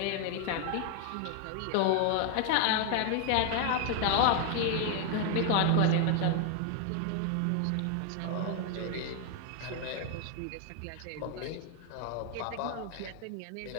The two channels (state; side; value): different; both; correlation 0.00